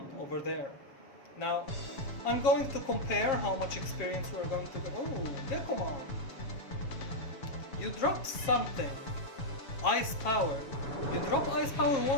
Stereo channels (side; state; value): right; late; 7.4 ms